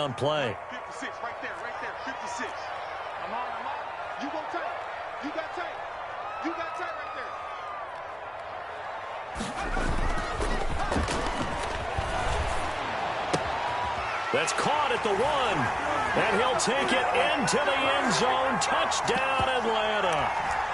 play. 56, right there, 56. I'm on. You go tight. You got tight. You got tight right there. That's caught at the 1. And he'll take it into the end zone. Touchdown, Atlanta.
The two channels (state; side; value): identical; both; correlation 1.00